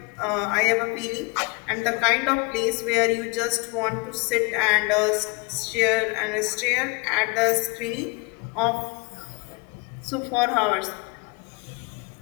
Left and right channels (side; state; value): right; quieter; 28.5 dB